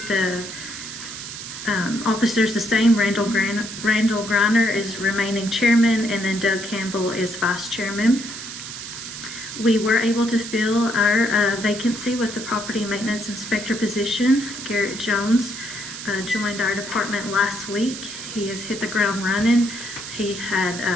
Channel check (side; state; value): right; noise; hiss, 9 dB below the sound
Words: the officers the same. Randall Griner is remaining chairman, and then Doug Campbell is vice chairman. We were able to fill our vacancy with the property maintenance inspector position. Garrett Jones joined our department last week. He has hit the ground running. He had